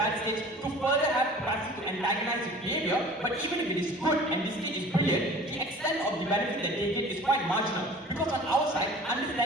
states to further have capacity to antagonize its behavior. But even if it is good and the state is brilliant, the extent of the benefit that they get is quite marginal. Because on our side,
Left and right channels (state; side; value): normal; both; correlation 0.44